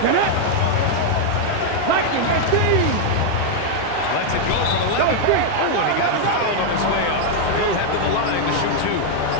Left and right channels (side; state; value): both; different; correlation 0.00